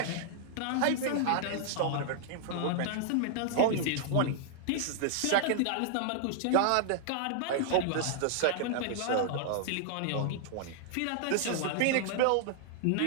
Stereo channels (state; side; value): different; both; correlation -0.01